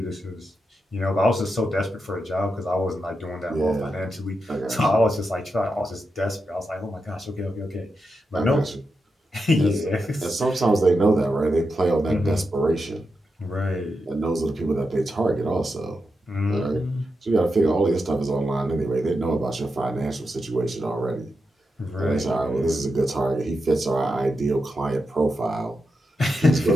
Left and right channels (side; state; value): both; normal; correlation 0.87